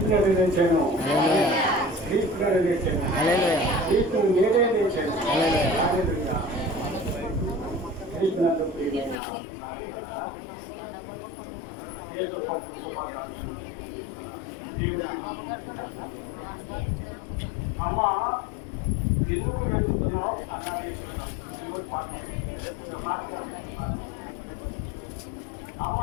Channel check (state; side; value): drops out; right; at 9.2 s